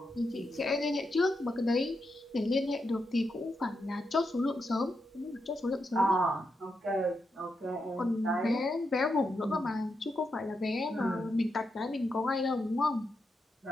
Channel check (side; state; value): both; normal; correlation 0.84